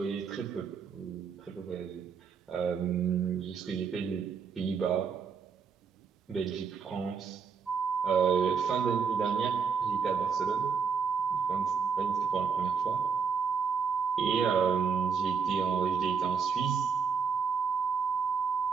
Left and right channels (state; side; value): quieter; left; 6.1 dB